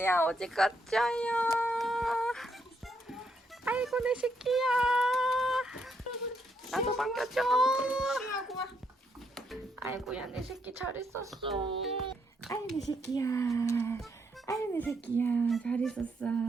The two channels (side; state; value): both; normal; correlation 0.75